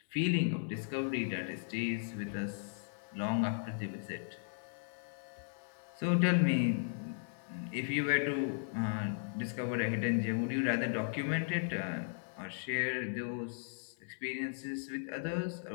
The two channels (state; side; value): silent; right; 53 dB below the other